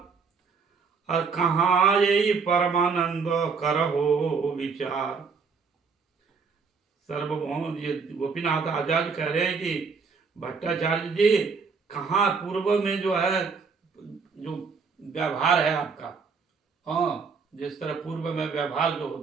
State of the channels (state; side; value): quieter; left; 5.2 dB